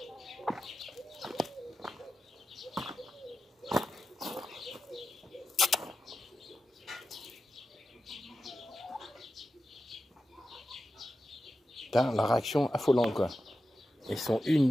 Putain, la réaction affolante, quoi. Ils sont 1,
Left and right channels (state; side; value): normal; both; correlation 0.91